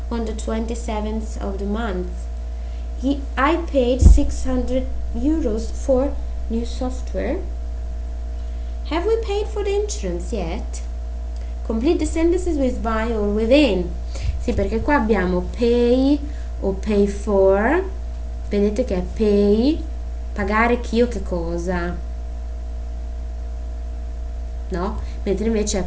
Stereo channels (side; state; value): both; identical; correlation 1.00